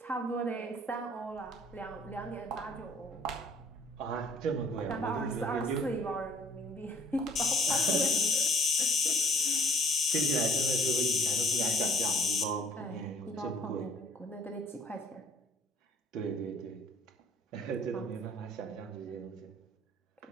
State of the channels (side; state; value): both; normal; correlation 0.56